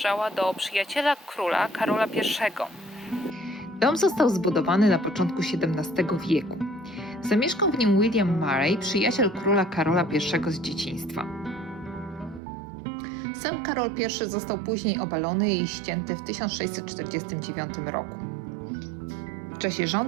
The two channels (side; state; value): left; drops out; at 12.4 s